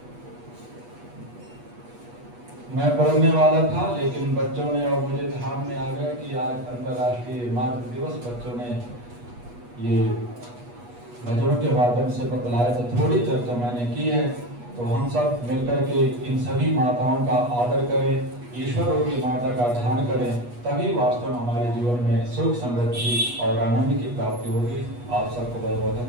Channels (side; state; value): left; late; 8.3 ms